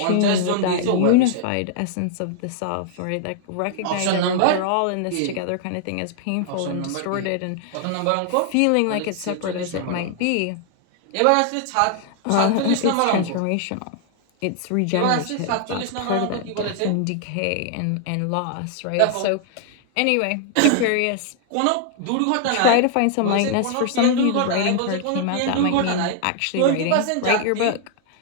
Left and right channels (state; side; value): different; both; correlation 0.00